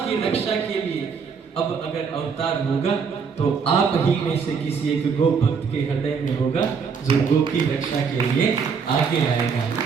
रक्षा के लिए अब अगर अवतार होगा तो आप ही में से किसी एक गो भक्त के हृदय में होगा जो गो की रक्षा के लिए आगे आएगा।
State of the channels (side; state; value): left; quieter; 5.9 dB